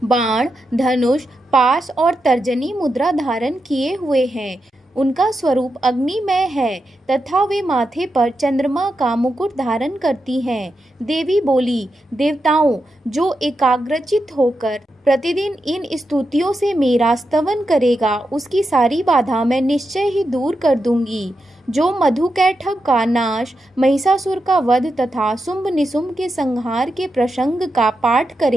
बाण, धनुष, पास और तर्जनी मुद्रा धारण किए हुए हैं। उनका स्वरूप अग्निमय है तथा वे माथे पर चंद्रमा का मुकुट धारण करती हैं। देवी बोली, देवताओं, जो एकाग्रचित होकर प्रतिदिन इन स्तुतियों से मेरा स्तवन करेगा, उसकी सारी बाधा मैं निश्चय ही दूर कर दूंगी। जो मधुकैटभ का नाश, महिषासुर का वध तथा शुंभ निशुंभ के संहार के प्रसंग का पाठ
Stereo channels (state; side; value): normal; both; correlation 0.87